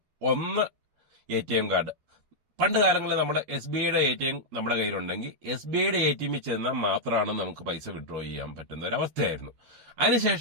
ഒന്ന്, ATM കാർഡ്. പണ്ട് കാലങ്ങളിൽ നമ്മുടെ SBIയുടെ ATM നമ്മുടെ കയ്യിലുണ്ടെങ്കിൽ SBIയുടെ ATMിൽ ചെന്നാൽ മാത്രമാണ് നമുക്ക് പൈസ വിഡ്രോ ചെയ്യാൻ പറ്റുന്ന ഒരു അവസ്ഥയായിരുന്നു.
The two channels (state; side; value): late; left; 13 ms